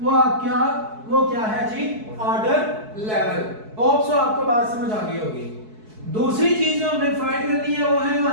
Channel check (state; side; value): late; left; 4.6 ms